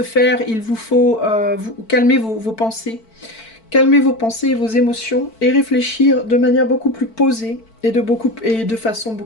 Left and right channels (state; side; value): late; right; 4.5 ms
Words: faire, il vous faut calmer vos pensées. Calmer vos pensées et vos émotions et réfléchir de manière beaucoup plus posée et de façon